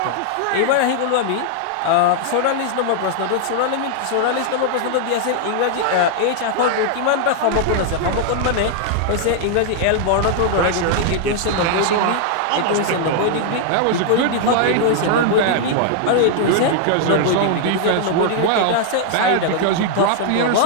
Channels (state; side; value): different; both; correlation -0.01